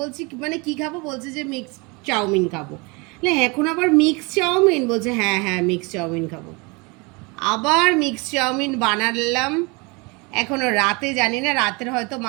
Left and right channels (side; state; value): left; quieter; 28.2 dB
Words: মানে কি খাবো, বলছে যে মিক্স চাউমিন খাবো। না এখন আবার মিক্স চাউমিন, বলছে হ্যাঁ হ্যাঁ মিক্স চাউমিন খাবো। আবার মিক্স চাউমিন বানালাম। এখনো রাতে জানি না, রাতের হয়তো